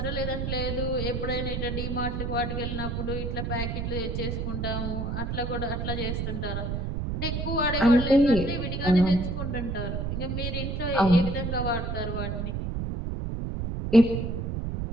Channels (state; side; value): noise; right; rumble, 2 dB below the sound